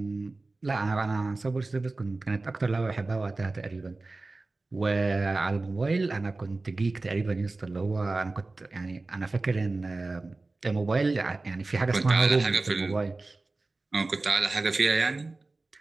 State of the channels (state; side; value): quieter; left; 3.3 dB